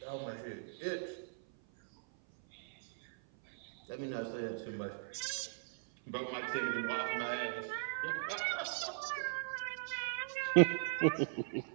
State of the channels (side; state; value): left; silent; 52 dB below the other